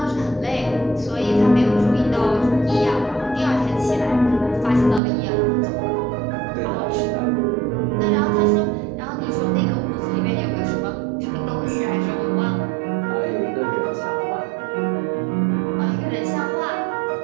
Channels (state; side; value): drops out; left; at 5.0 s